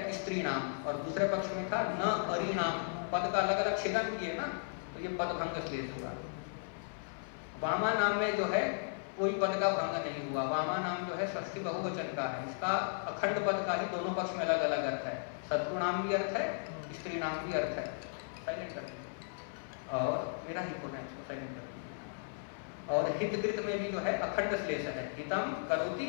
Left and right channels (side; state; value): right; silent; 54 dB below the other